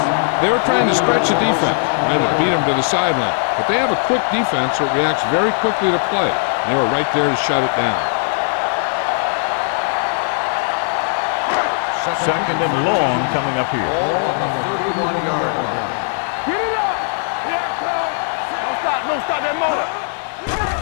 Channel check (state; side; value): silent; right; 63 dB below the other